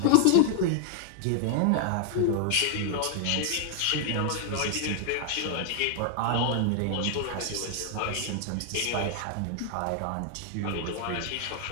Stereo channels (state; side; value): different; both; correlation 0.00